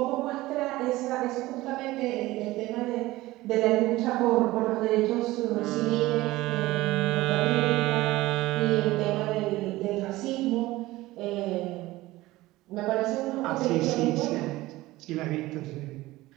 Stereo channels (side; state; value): left; quieter; 18.3 dB